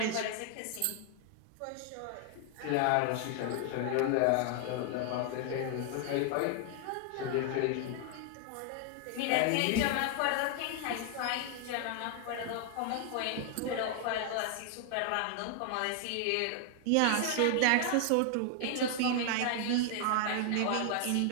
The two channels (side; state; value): both; different; correlation 0.00